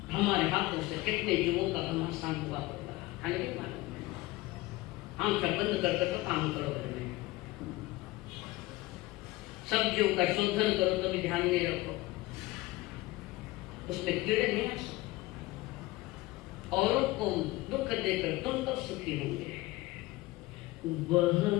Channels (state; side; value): quieter; right; 19.4 dB